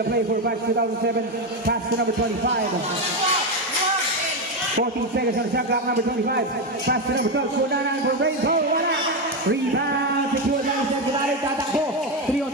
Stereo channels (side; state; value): both; normal; correlation 0.10